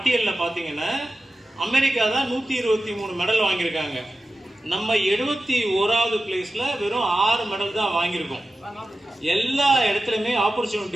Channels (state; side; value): normal; both; correlation 0.94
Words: பாத்தீங்கன்னா அமெரிக்கா தான் 123 மெடல் வாங்கியிருக்காங்க. நம்ம 71வது பிளேஸ்ல வெறும் 6 மெடல் தான் வாங்கியிருக்கோம். எல்லா இடத்துலயுமே